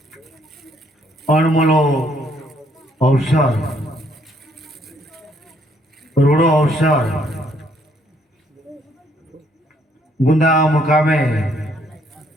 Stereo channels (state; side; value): normal; both; correlation 0.68